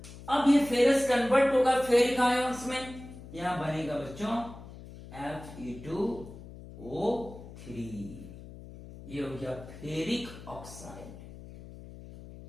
अब ये फेरस कन्वर्ट होगा फेरिक आयंस में, यहां बनेगा बच्चों Fe2O3। ये हो गया फेरिक ऑक्साइड।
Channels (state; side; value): noise; left; hum, 15 dB below the sound